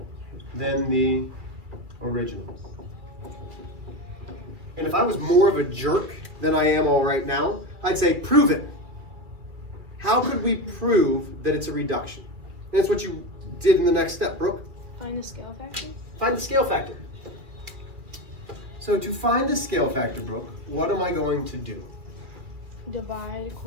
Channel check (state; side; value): late; left; 2.5 ms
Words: than the original. And if I was more of a jerk than I am all right now, I'd say, prove it. How could we prove that it's a reduction? And that's what you did in the next step, Brooke. Find the scale factor. Find the scale factor. So to find the scale factor, Brooke, what am I going to do? Divide